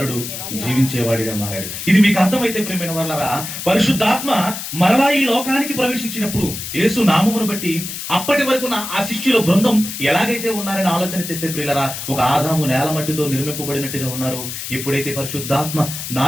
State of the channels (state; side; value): noise; left; hiss, 7 dB below the sound